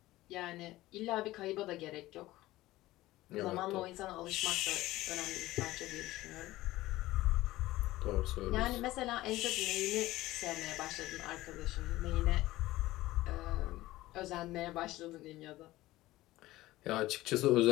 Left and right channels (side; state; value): right; quieter; 17.2 dB